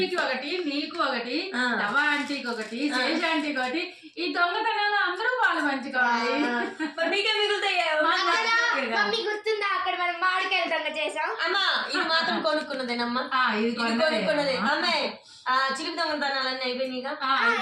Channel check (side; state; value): both; identical; correlation 1.00